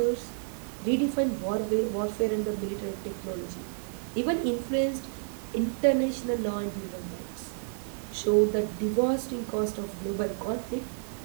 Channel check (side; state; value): left; silent; digital silence